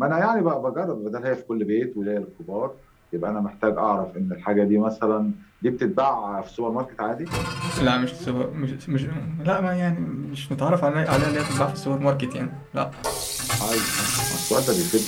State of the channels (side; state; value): both; identical; correlation 1.00